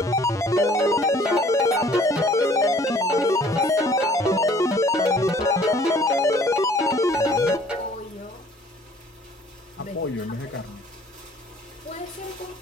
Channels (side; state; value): both; normal; correlation 0.55